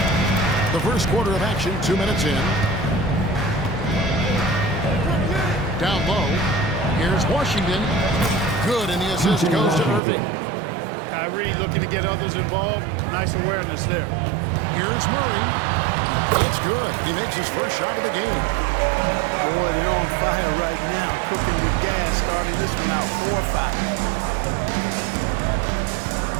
The first quarter of action, 2 minutes in. Down low, here's Washington. Good, and the assist goes to Irving. Kyrie looking to get others involved. Nice awareness there. Here's Murray. It's good. He makes his first shot of the game. Boy, they're on fire right now, cooking with gas, starting this one out 4-5.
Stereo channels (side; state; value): left; drops out; at 10.0 s